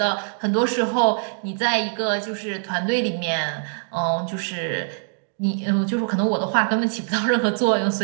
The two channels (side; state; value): left; silent; digital silence